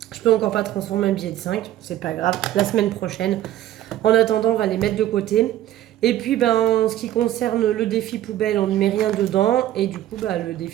Je peux encore pas transformer un billet de 5, c'est pas grave. La semaine prochaine. En attendant, on va les mettre de côté. Et puis, en ce qui concerne le défi poubelle, on ne met rien dedans. Et du coup, le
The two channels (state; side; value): quieter; left; 13.2 dB